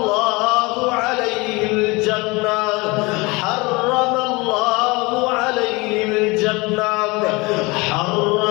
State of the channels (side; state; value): right; quieter; 24.8 dB